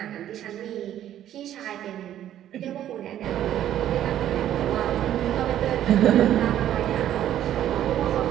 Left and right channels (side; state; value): left; quieter; 11.6 dB